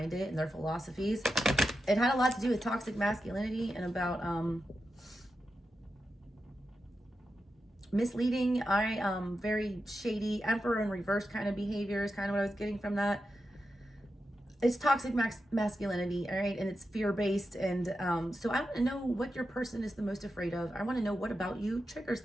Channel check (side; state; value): both; normal; correlation 0.89